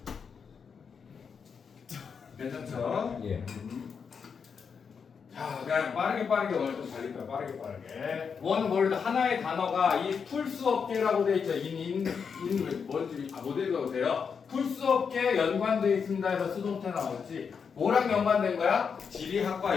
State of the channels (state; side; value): quieter; right; 6.2 dB